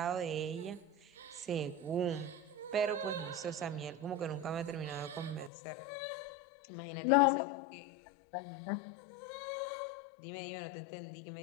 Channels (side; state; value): right; drops out; at 5.5 s